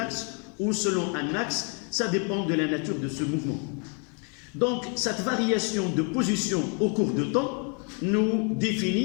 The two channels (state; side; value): quieter; right; 38.4 dB